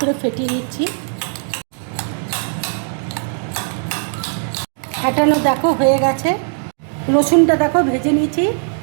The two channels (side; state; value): left; silent; 61 dB below the other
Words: করে ফেটিয়ে নিচ্ছি, ফেটানো দেখো হয়ে গেছে। রসুনটা দেখো ভেজে নিয়েছি,